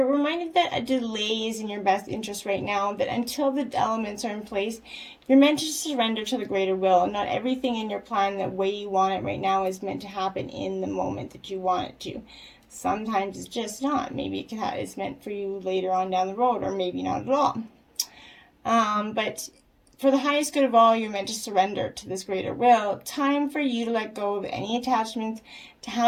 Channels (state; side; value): identical; both; correlation 1.00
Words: reminded that a delay is in your best interest right now, that until the elements are in place, you're meant to surrender to the greater will. Not everything in your plan the way you want it right now is meant to happen in the moment that you want it to. Sometimes it's just not. Maybe it's meant for you later on down the road, or maybe not at all. But for the highest good of all, you're meant to surrender to this greater will. Time for you to let go of any attachment to